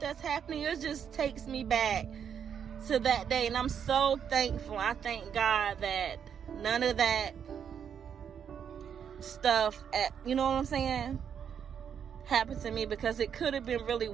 that's happening, it just takes me back to that day, and I'm so thankful. I thank God that none of that stuff, you know what I'm saying, happened to me, because it could have been really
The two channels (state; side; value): quieter; left; 7.9 dB